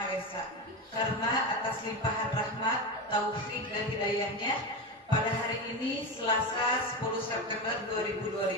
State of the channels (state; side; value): normal; both; correlation 0.18